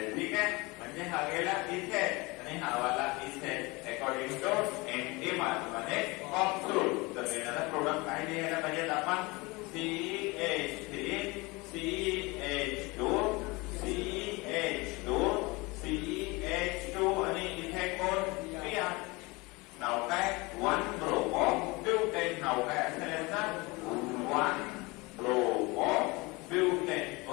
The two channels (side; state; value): right; quieter; 24.6 dB